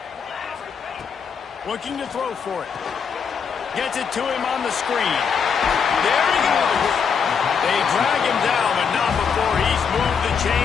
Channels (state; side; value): quieter; right; 6.4 dB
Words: Looking to throw for it. Gets it to him on the screen. There he goes. They drag him down, but not before he's moved the